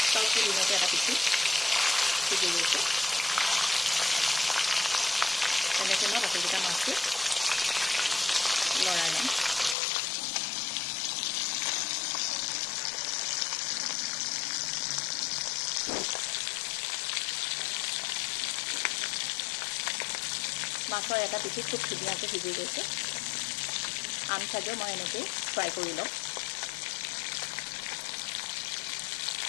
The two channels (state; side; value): drops out; right; at 9.8 s